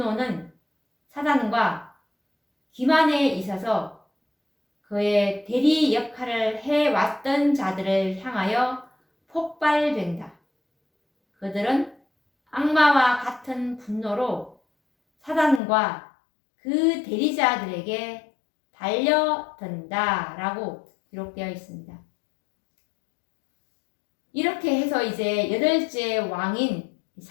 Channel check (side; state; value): right; drops out; at 15.6 s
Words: 사단과 기만에 있어서 그의 대리 역할을 해왔던 자들을 향하여 폭발된다. 그들은 악마와 같은 분노로 사단과 그 대리자들에게 달려든다 라고 기록되어 있습니다. 이렇게 해서 이제 8째 왕인